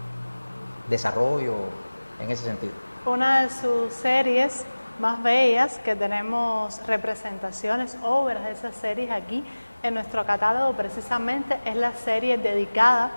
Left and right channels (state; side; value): inverted; both; correlation -1.00